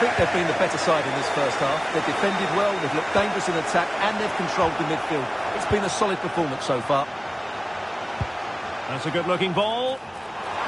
they've been the better side in this first half. They've defended well, they've looked dangerous in attack, and they've controlled the midfield. It's been a solid performance so far. That's a good-looking ball.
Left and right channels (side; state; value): both; identical; correlation 1.00